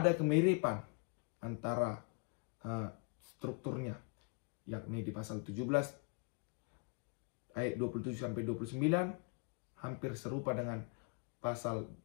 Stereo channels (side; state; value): right; quieter; 36.5 dB